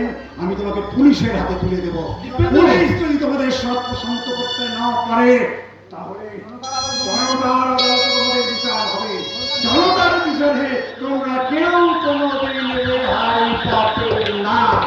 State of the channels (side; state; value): both; identical; correlation 1.00